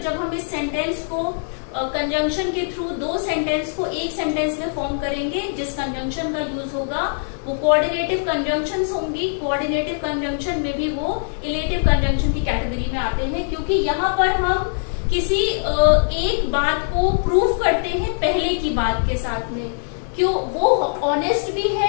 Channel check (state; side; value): silent; right; digital silence